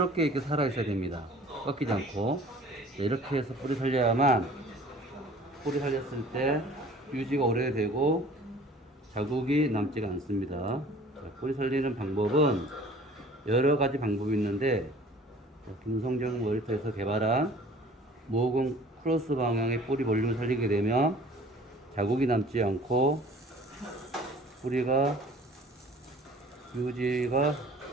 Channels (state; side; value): normal; both; correlation 0.49